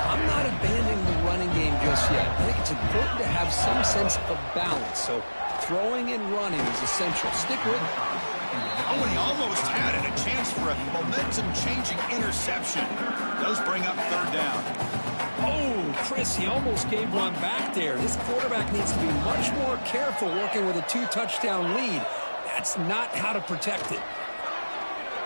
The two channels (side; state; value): both; inverted; correlation -1.00